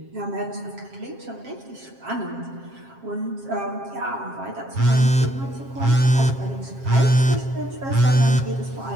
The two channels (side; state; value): left; late; 7.5 ms